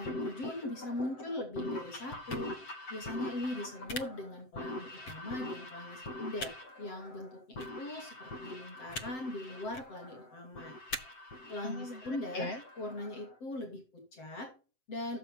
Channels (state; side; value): late; right; 7.7 ms